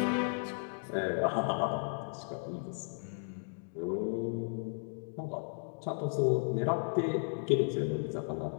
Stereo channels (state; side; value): silent; right; digital silence